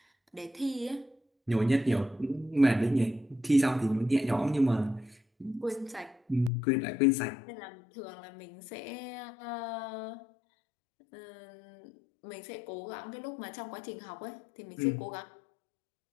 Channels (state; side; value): drops out; right; at 6.5 s